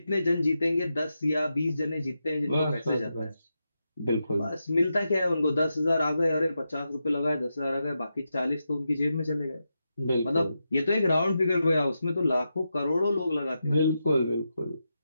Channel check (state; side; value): inverted; both; correlation -0.87